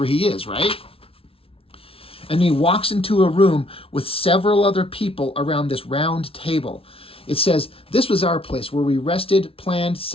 he is, right? And he walks into a room with several other people around this round table. It says, this was our place where we rested, planned,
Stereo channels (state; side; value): late; right; 0.26 ms